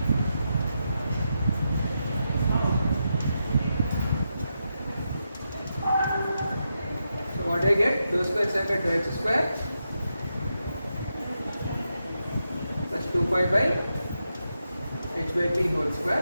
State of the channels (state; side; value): inverted; both; correlation -0.86